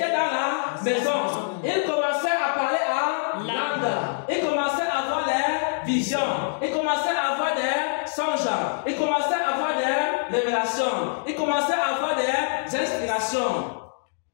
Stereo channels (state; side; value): silent; right; digital silence